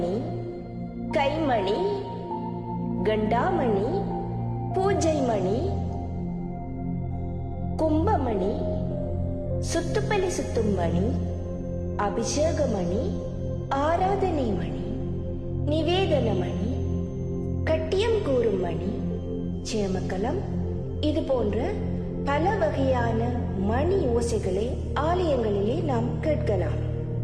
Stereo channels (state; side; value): identical; both; correlation 1.00